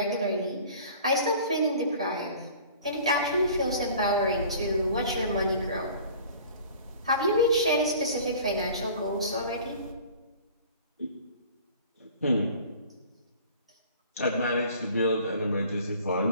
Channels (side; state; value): both; inverted; correlation -0.46